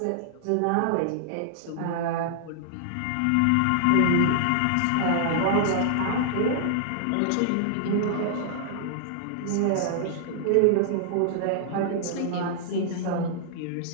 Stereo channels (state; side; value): different; both; correlation -0.01